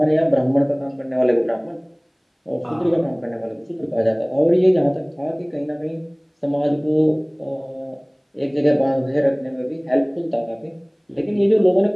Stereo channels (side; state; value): both; identical; correlation 1.00